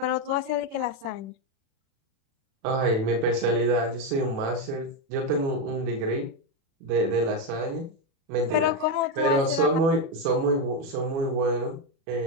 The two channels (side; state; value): left; late; 36 ms